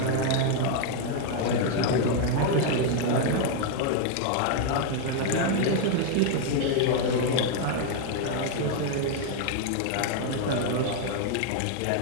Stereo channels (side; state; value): both; different; correlation 0.00